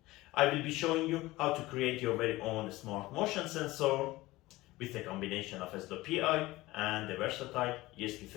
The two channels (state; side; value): quieter; right; 19.0 dB